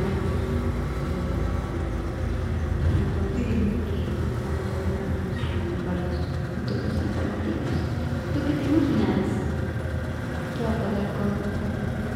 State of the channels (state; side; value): identical; both; correlation 1.00